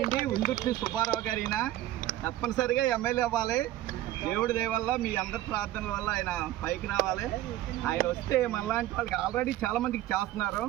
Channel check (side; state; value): left; quieter; 14.4 dB